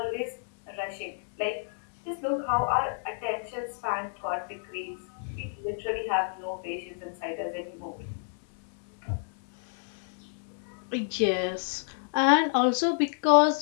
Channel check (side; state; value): right; silent; 58 dB below the other